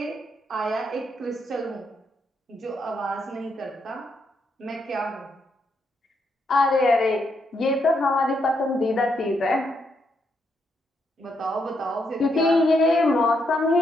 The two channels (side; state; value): both; normal; correlation 0.78